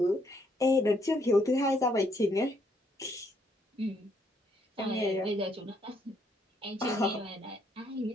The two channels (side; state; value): both; normal; correlation 0.71